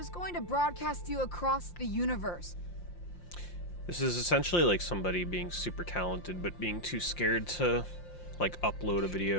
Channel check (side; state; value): right; late; 5.7 ms